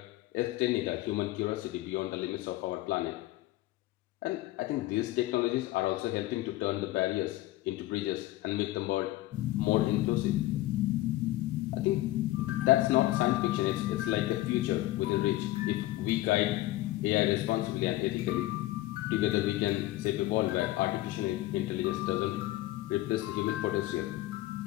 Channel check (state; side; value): quieter; right; 16.9 dB